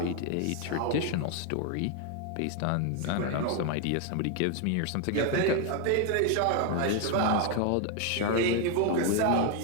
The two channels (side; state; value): both; different; correlation 0.01